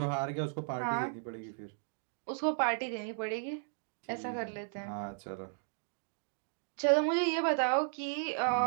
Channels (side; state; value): left; silent; digital silence